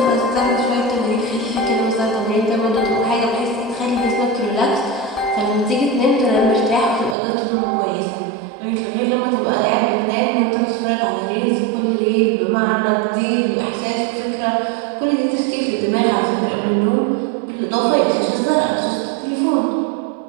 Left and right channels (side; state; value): left; drops out; at 7.2 s